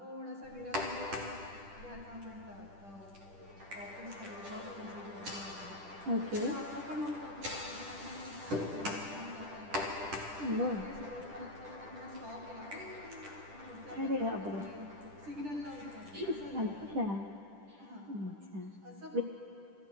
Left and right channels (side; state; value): left; late; 10 ms